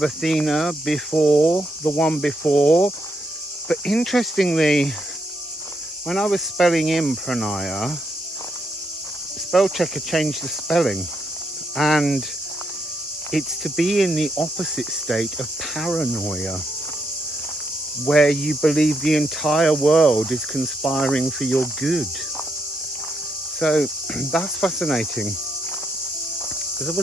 Athena before, the one before. But interestingly, when I was spelling in Pronaia, spell checker changed the spelling, and it's to be in the opposite state of paranoia, where you believe the entire world is conspiring for your good. So that's fascinating. As I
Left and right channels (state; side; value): normal; both; correlation 0.79